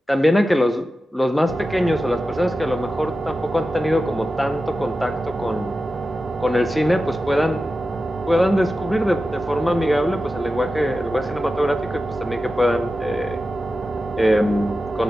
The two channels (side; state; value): both; normal; correlation 0.93